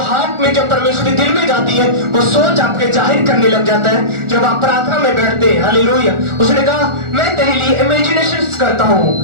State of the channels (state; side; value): late; left; 1.4 ms